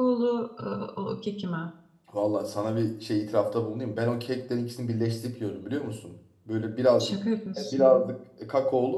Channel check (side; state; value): both; identical; correlation 1.00